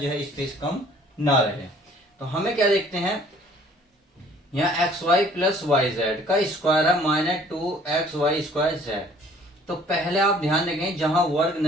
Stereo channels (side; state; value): both; normal; correlation 0.55